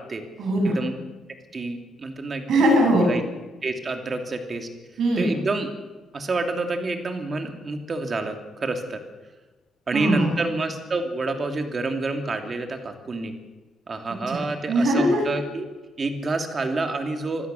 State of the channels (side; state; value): both; normal; correlation 0.79